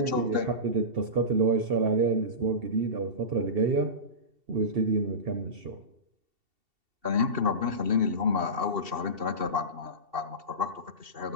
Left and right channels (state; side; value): late; left; 2.7 ms